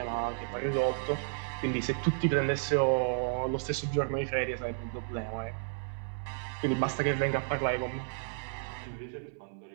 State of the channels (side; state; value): left; silent; 56 dB below the other